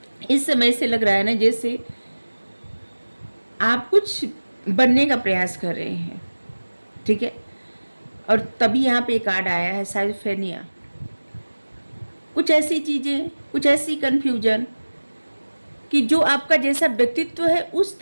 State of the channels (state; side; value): inverted; both; correlation -1.00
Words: इस समय से लग रहा है ना जैसे आप कुछ बनने का प्रयास कर रहे हैं, ठीक है। और तभी यहाँ पे कार्ड आया है साइफेनिया। कुछ ऐसी चीज़ें, कुछ ऐसी कन्फ्यूजन कि जो आपका जैसा व्यक्तित्व है उस